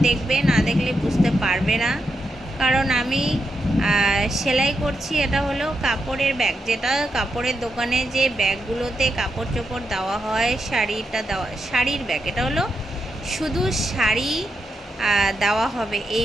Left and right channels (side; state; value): both; normal; correlation 0.85